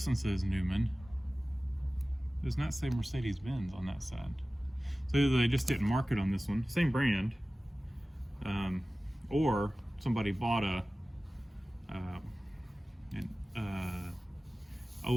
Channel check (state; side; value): normal; both; correlation 0.97